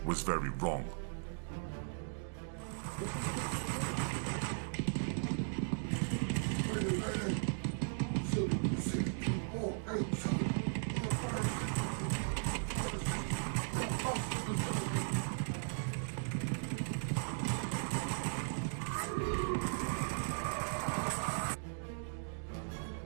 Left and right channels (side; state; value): left; silent; digital silence